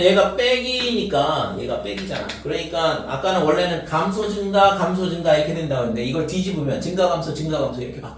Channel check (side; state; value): both; identical; correlation 1.00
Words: 얘가 빼기니까 얘가 빼기잖아. 그러니까 아까는 원래는 감소 증가 이렇게 된다고 했는데 이걸 뒤집으면 증가 감소 이렇게